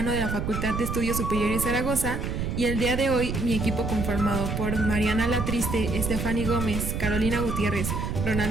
de la Facultad de Estudios Superiores Zaragoza y el día de hoy mi equipo conformado por Mariana Latriste, Estefany Gómez, Carolina Gutiérrez,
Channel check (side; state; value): right; noise; rumble, 3 dB below the sound